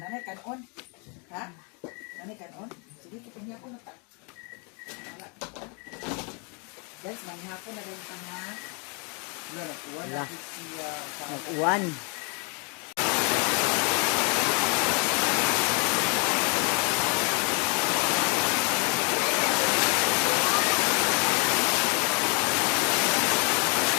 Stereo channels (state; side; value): quieter; right; 35.3 dB